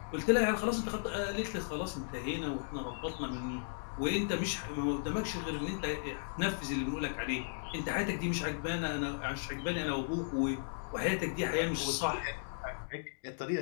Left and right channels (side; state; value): right; silent; digital silence